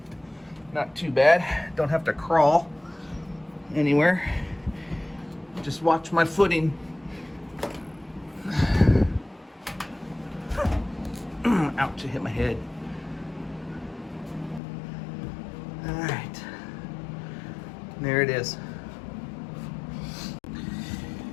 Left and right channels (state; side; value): drops out; right; at 14.6 s